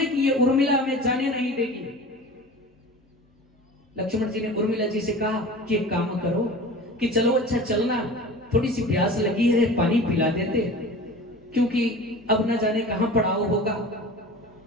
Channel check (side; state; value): both; normal; correlation 0.37